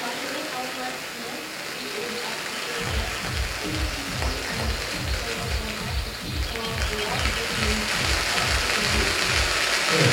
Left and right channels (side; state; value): both; identical; correlation 1.00